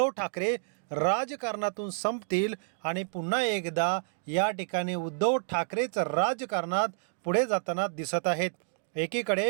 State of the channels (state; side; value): silent; left; digital silence